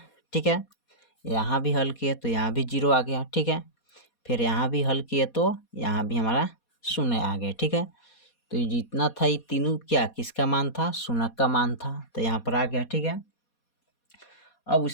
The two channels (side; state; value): right; late; 4.2 ms